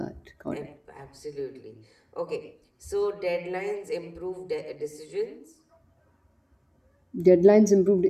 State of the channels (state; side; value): identical; both; correlation 1.00